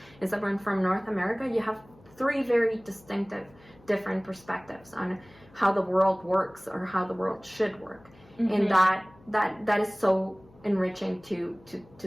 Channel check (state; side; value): noise; left; hum, 26 dB below the sound